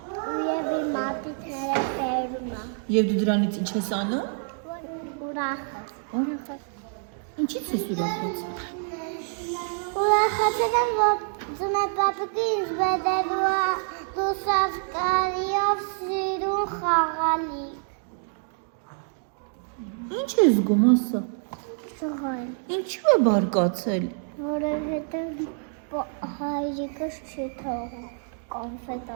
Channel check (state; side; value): silent; left; 60 dB below the other